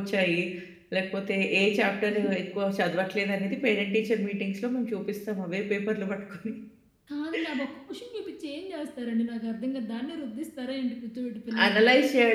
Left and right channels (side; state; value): both; identical; correlation 1.00